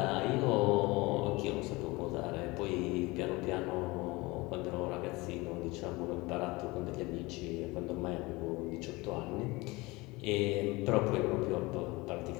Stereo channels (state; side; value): quieter; right; 23.0 dB